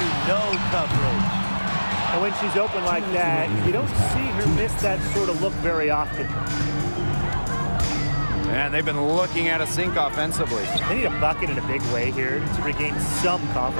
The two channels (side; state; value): both; inverted; correlation -1.00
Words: no coverage. And when she's open like that, you don't see her miss that sort of look very often. And they've been looking at a sink offensively. They need a bucket in a big way here to regain some